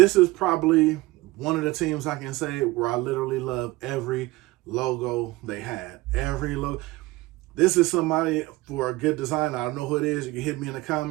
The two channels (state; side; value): quieter; left; 20.0 dB